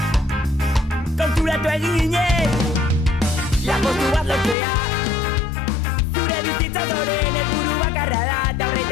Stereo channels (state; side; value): drops out; right; at 4.5 s